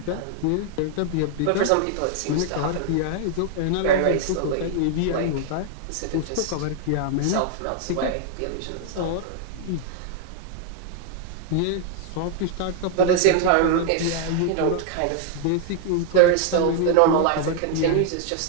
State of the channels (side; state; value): both; different; correlation 0.00